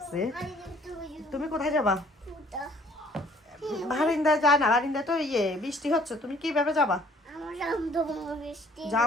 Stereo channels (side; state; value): both; normal; correlation 0.58